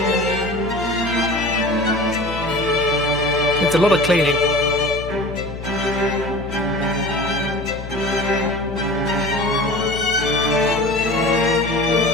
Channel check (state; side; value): noise; left; hum, 10 dB below the sound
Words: It's a lot of cleaning.